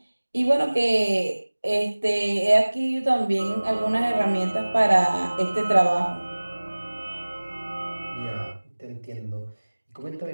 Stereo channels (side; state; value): both; inverted; correlation -1.00